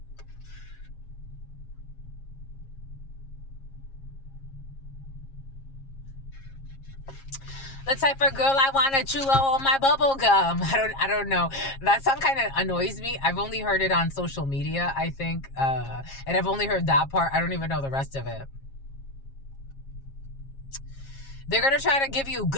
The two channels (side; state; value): right; late; 7.4 ms